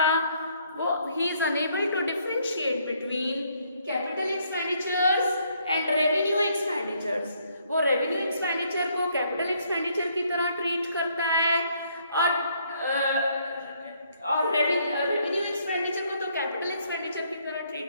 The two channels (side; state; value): both; inverted; correlation -0.68